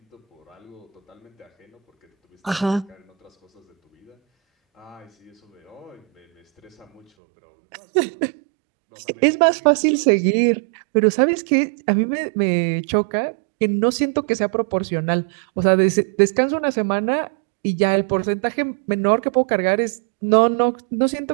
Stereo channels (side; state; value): left; drops out; at 7.1 s